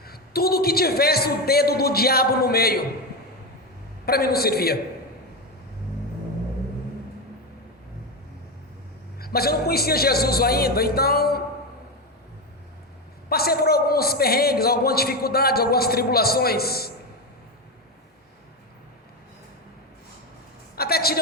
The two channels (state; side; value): normal; both; correlation 0.13